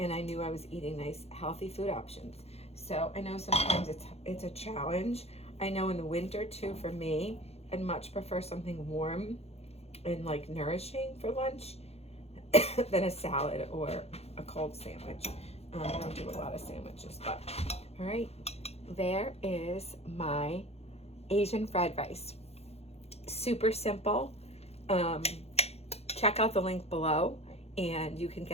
I knew I was eating nice, healthy food options. So I know sometimes it's a challenge. I know in the winter too, for me, I'd much prefer something warm and like nourishing for lunch than a salad or a cold sandwich. I don't do a lot of sandwiches, but all right, there is my Asian fried rice. Super simple. Check out the link below and you can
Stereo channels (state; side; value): late; right; 0.30 ms